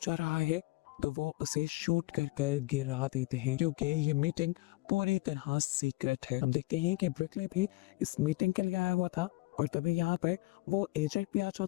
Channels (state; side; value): quieter; right; 21.7 dB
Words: जा रहा है तो वो उसे शूट कर गिरा देते हैं क्योंकि ये मीटिंग पूरी तरह सीक्रेट है। हम देखते हैं कि ब्रिकली भी इस मीटिंग के लिए आया हुआ था और तभी यहाँ पर वो एजेंट भी आ